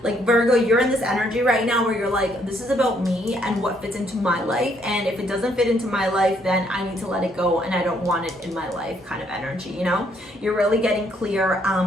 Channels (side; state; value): both; normal; correlation 0.69